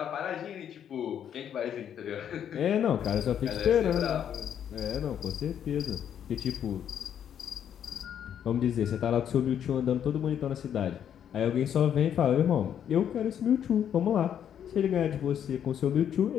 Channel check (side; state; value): right; quieter; 9.2 dB